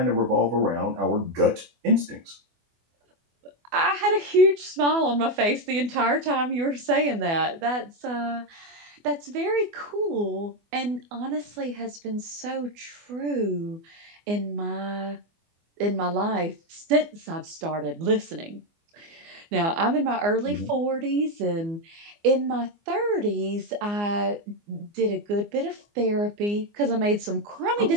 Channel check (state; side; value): late; left; 24 ms